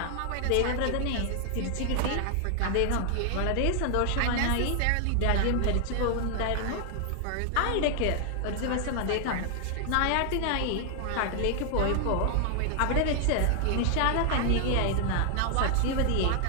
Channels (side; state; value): both; different; correlation 0.00